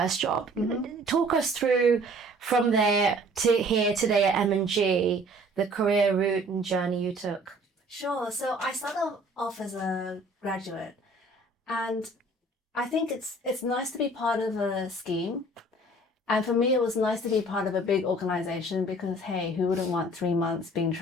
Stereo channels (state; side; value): normal; both; correlation 0.53